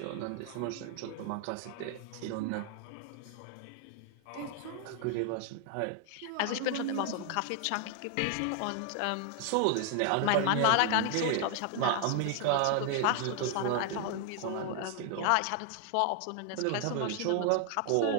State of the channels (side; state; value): both; different; correlation 0.00